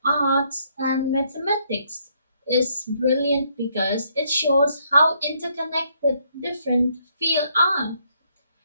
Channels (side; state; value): both; inverted; correlation -0.71